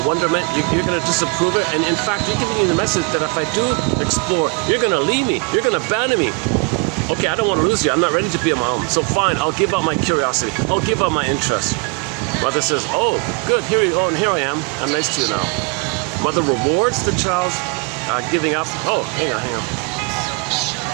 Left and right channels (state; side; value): quieter; left; 31.6 dB